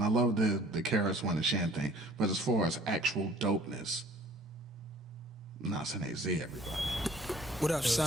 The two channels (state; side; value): normal; both; correlation 0.53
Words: love the KRS-One and Shan thing, but as far as actual dopeness, Nas and AZ, everybody. What up,